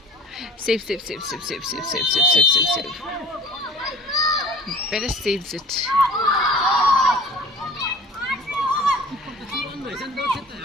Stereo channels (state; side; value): normal; both; correlation 0.45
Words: Save. Better saves it.